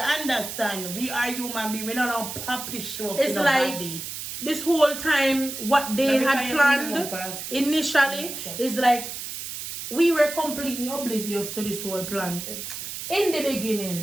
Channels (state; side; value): noise; right; hiss, 7 dB below the sound